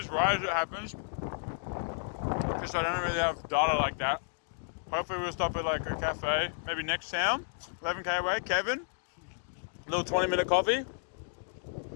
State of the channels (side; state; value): right; silent; digital silence